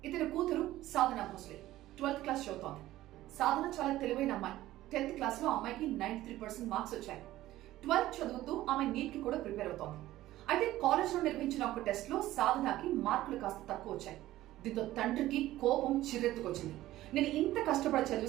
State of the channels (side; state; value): left; quieter; 15.3 dB